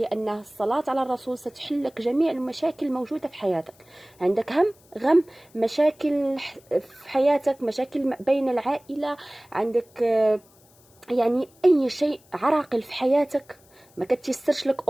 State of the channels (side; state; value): left; noise; hiss, 30 dB below the sound